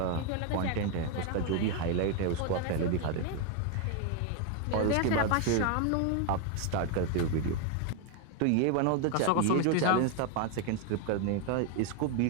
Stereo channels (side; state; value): both; different; correlation 0.01